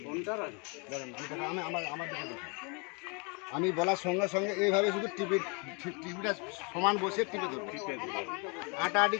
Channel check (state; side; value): quieter; right; 32.7 dB